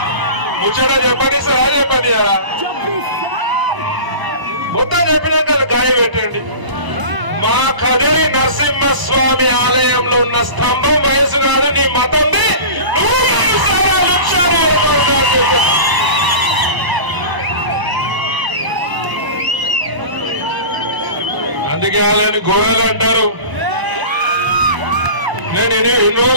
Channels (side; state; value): left; late; 1.0 ms